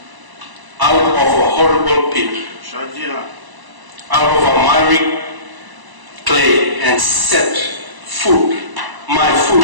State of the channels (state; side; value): late; left; 1.0 ms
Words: out of a horrible pit, Shajira. out of a miry clay, and set my foot